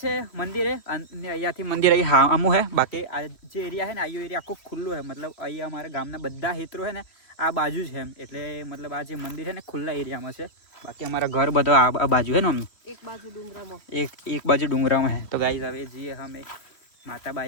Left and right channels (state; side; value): late; right; 3.1 ms